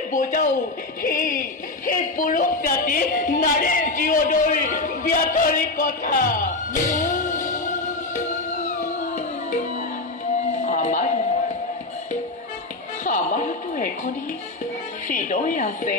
বুজাও সেই পুৰুষ জাতি নাৰীৰ জীৱনৰ ব্যাধৰি কথা। আমাৰোতো এখনি হৃদয় আছে,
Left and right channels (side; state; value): right; quieter; 3.2 dB